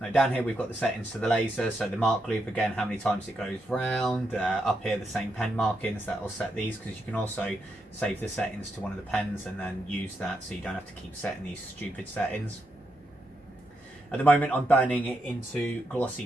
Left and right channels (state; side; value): normal; both; correlation 0.82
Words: down here we've got the settings to the laser. So the mark loop, again, how many times it goes round. Up here the same pen markings, that will set these, because you can also save the settings to one of the pens and then use that, so you don't have to keep setting these stupid settings. At the moment I'm burning it into glossy